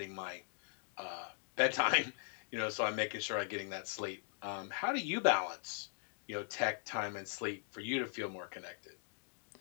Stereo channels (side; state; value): right; silent; 51 dB below the other